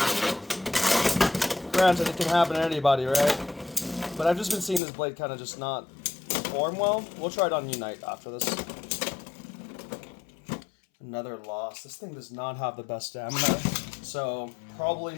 Granted, it can happen to anybody, right? But I've just been seeing this blade kind of just not perform well. We'll try it on Unite after this. Another loss. This thing does not have the best stamina, so probably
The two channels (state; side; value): drops out; right; at 4.8 s